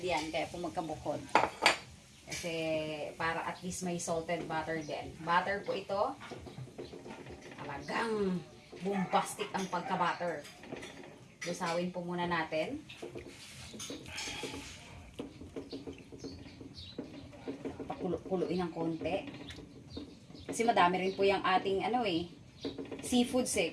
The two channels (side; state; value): both; identical; correlation 1.00